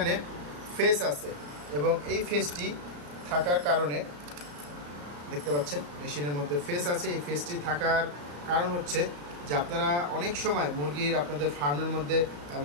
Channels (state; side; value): late; left; 34 ms